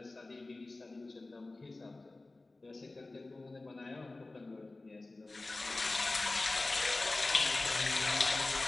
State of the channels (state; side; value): quieter; right; 3.1 dB